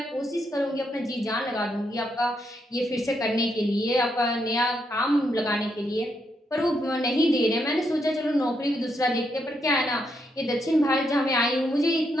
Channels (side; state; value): both; normal; correlation 0.79